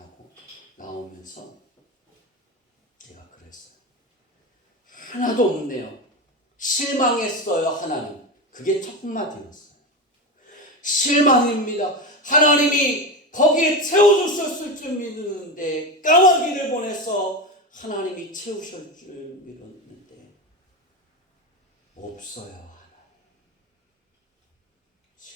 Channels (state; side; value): normal; both; correlation 0.19